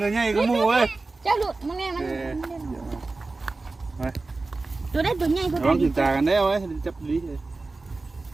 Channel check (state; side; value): quieter; left; 3.5 dB